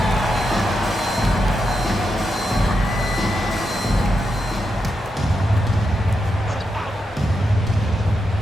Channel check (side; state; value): both; normal; correlation 0.85